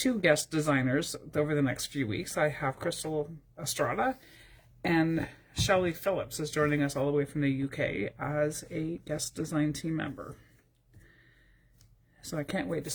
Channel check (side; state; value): both; identical; correlation 1.00